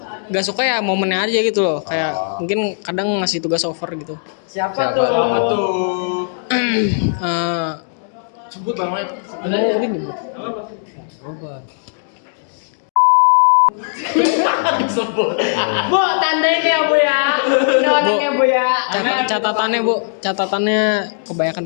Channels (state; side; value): silent; right; digital silence